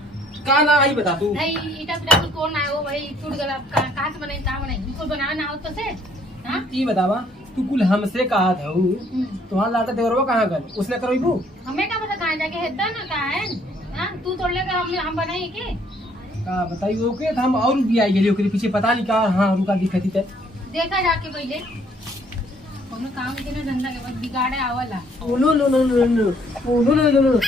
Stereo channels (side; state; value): both; normal; correlation 0.64